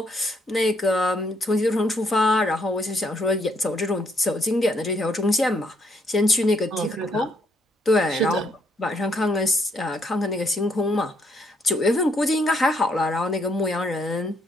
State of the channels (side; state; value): both; normal; correlation 0.71